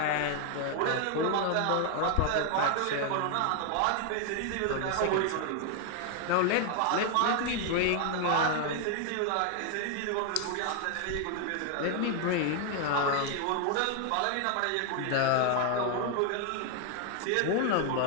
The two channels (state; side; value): different; both; correlation 0.01